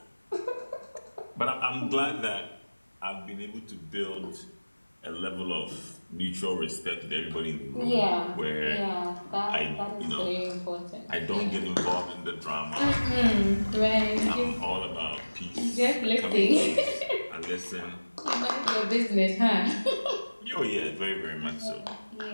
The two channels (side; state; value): both; inverted; correlation -1.00